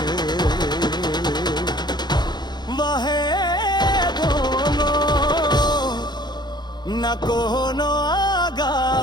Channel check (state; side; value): late; right; 0.21 ms